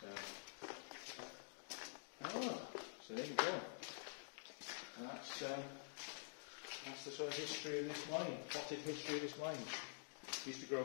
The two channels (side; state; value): right; silent; digital silence